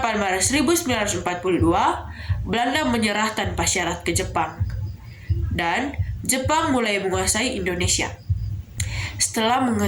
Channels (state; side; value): identical; both; correlation 1.00